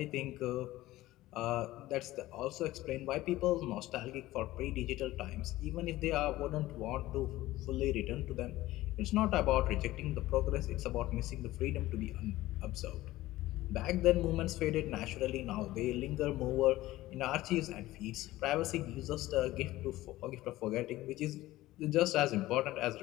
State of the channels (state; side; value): quieter; right; 16.8 dB